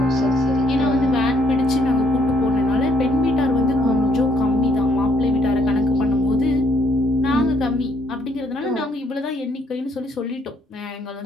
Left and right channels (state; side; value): normal; both; correlation 0.68